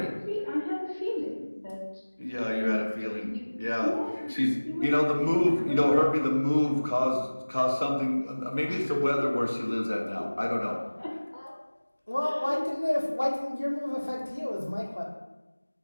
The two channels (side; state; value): both; inverted; correlation -1.00